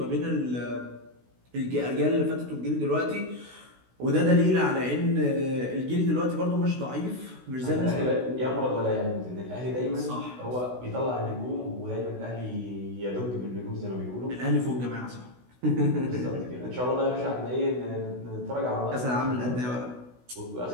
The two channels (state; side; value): late; left; 16 ms